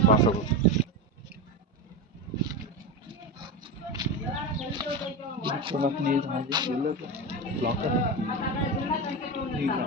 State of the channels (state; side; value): normal; both; correlation 0.18